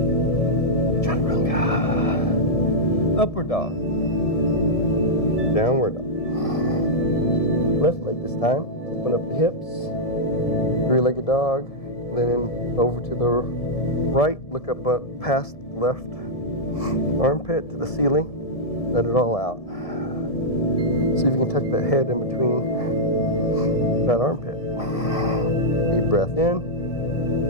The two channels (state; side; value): late; right; 1.7 ms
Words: Upward dog. Downward dog. Left leg this time. Open up the hips. Three-legged dog. Then over to the right. Look up past left armpit to the ceiling. Let it all out. See if you can tuck that head in between that armpit. Deep breath in.